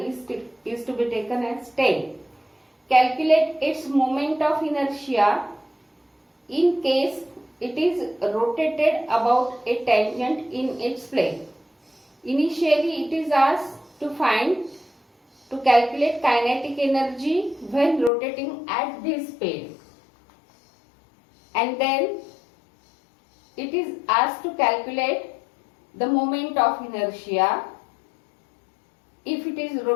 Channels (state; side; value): drops out; right; at 18.1 s